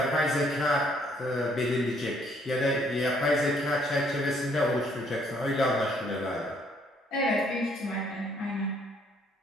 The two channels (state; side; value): normal; both; correlation 0.66